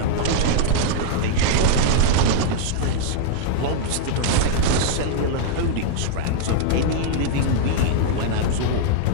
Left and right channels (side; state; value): both; different; correlation -0.01